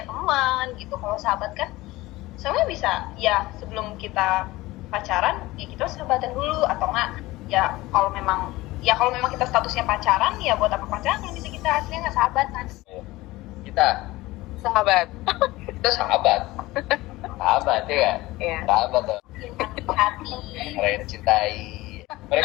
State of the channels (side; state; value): right; quieter; 19.2 dB